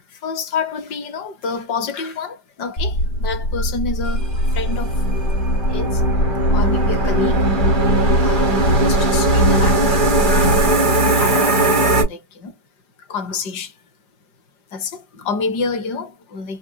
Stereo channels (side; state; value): right; late; 5.0 ms